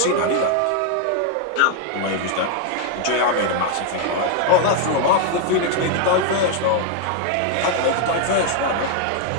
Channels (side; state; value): both; different; correlation 0.00